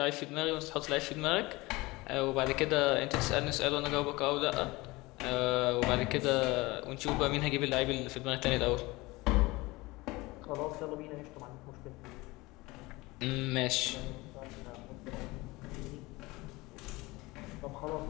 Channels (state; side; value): quieter; right; 21.9 dB